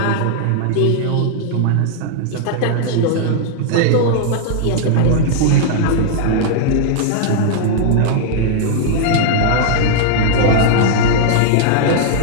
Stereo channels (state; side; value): different; both; correlation -0.01